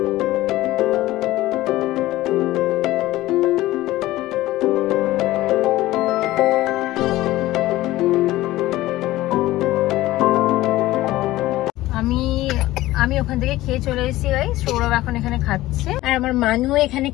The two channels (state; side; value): quieter; right; 16.7 dB